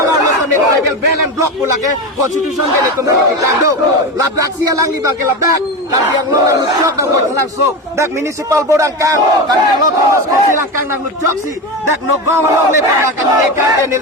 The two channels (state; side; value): normal; both; correlation 0.20